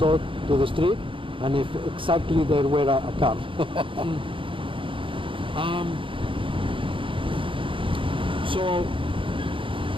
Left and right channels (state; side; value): late; left; 0.25 ms